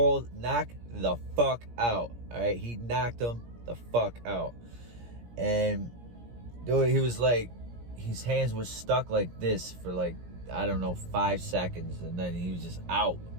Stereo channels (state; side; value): late; left; 17 ms